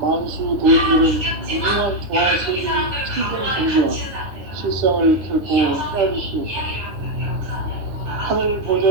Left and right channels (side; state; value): left; late; 9.7 ms